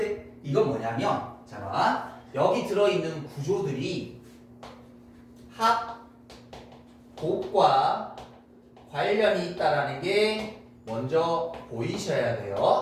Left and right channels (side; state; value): both; identical; correlation 1.00